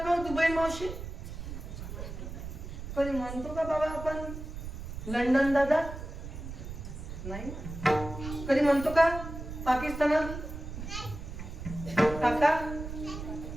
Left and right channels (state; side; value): noise; right; rumble, 9 dB below the sound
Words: दुबई मावशी? कधी म्हणतो का बाबा आपण लंडन दादा? नाही. कधी म्हणतो का पाकिस्तानात काका?